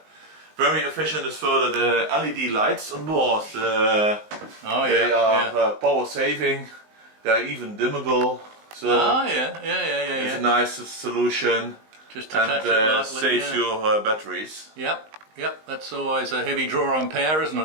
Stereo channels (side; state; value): left; late; 19 ms